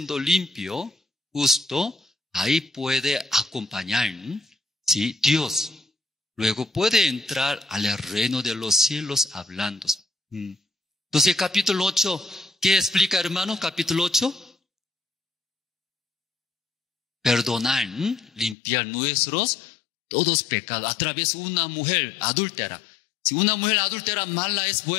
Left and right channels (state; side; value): drops out; right; at 18.6 s